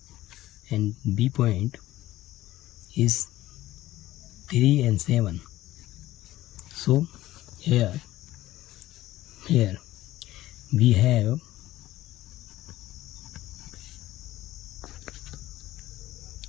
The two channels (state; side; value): quieter; right; 15.5 dB